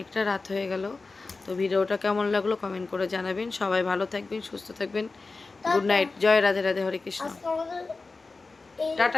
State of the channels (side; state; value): right; quieter; 3.8 dB